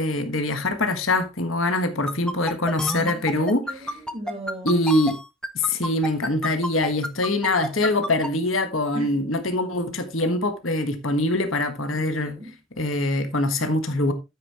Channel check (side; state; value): both; normal; correlation 0.33